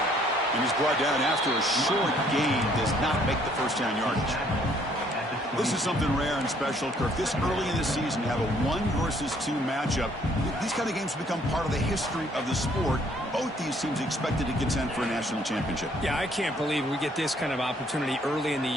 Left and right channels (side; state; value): both; normal; correlation 0.63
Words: And he's brought down after a short gain. Does not make the first down yardage. This is something rare and special, Kirk. This early in the season, you have a 1 versus 2 matchup. These kind of games become part of the history of the sport. Both these teams expected to contend for a national championship. Yeah, I can't believe we get this kind of opportunity early in the